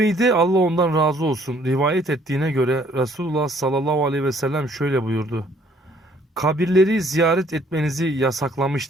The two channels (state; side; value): normal; both; correlation 0.62